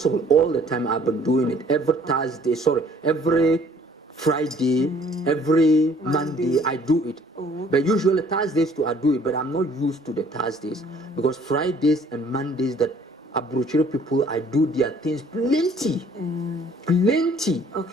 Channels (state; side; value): normal; both; correlation 0.57